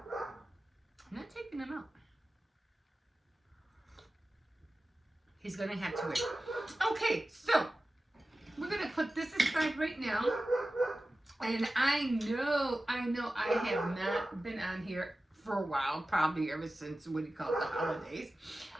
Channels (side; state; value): both; normal; correlation 0.95